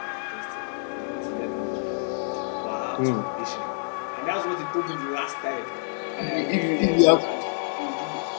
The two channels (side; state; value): right; silent; 59 dB below the other